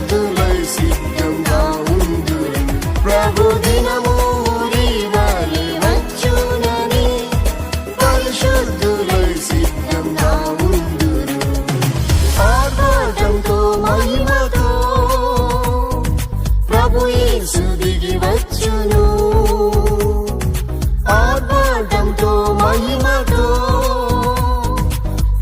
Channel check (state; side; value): identical; both; correlation 1.00